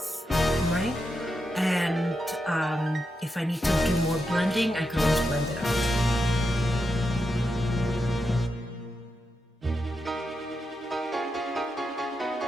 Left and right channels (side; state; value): both; normal; correlation 0.86